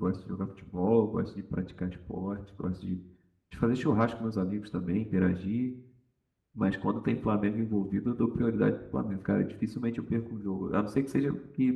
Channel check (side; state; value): both; identical; correlation 1.00